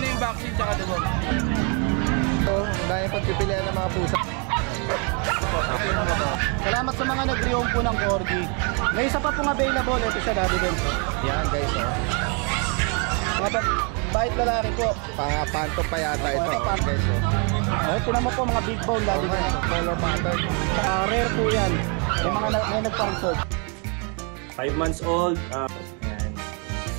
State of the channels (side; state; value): left; quieter; 36.2 dB